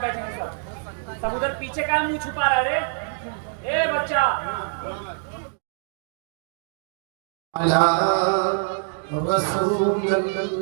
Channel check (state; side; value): silent; left; 62 dB below the other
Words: बैठेंगे? सब उधर पीछे का मुंह छुपा रहा है। ए बच्चा